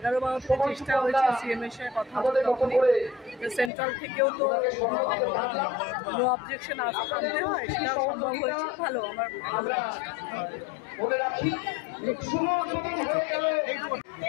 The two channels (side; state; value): right; drops out; at 3.7 s